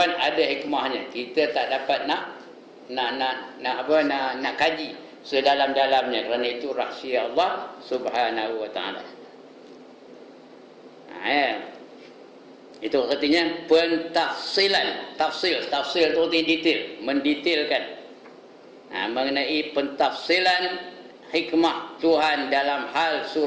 ada hikmahnya. Kita tak dapat nak kaji sedalam-dalamnya, kerana itu rahsia Allah Subhanahu wa taala. Ya. Itu artinya pentafsilan. Tafsil itu arti detail, mendetailkan. Mengenai pentafsilan hikmah Tuhan dalam hal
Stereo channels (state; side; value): identical; both; correlation 1.00